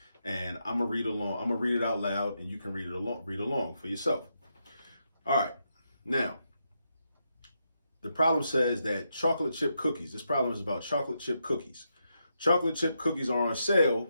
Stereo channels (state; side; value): inverted; both; correlation -0.82